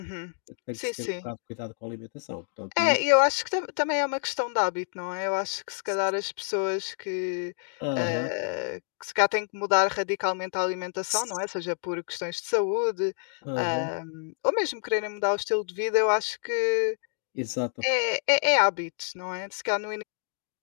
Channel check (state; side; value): silent; right; digital silence